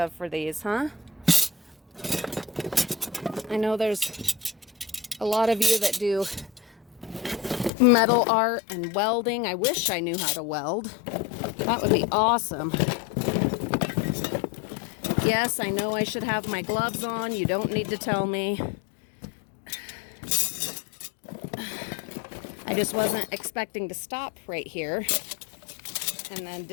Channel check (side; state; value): right; drops out; at 7.7 s